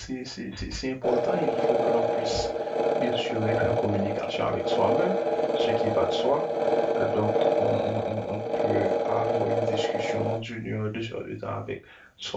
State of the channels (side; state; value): both; identical; correlation 1.00